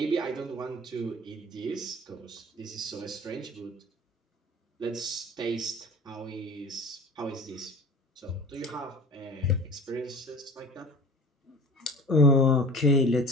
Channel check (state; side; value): normal; both; correlation 0.40